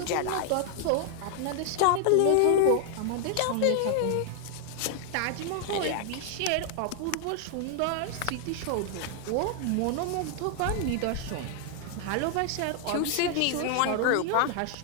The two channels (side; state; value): both; different; correlation 0.00